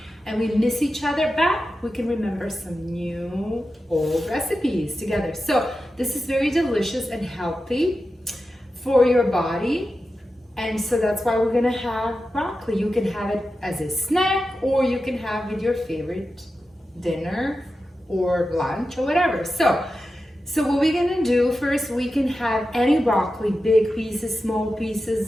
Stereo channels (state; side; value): normal; both; correlation 0.91